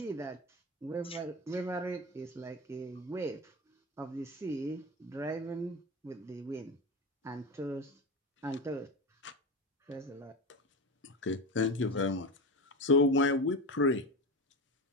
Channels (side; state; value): both; normal; correlation 0.23